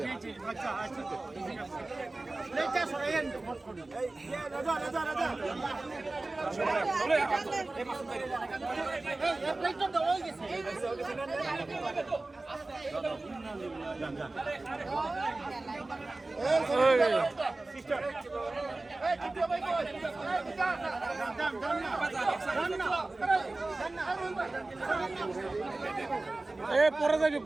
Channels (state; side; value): quieter; left; 3.1 dB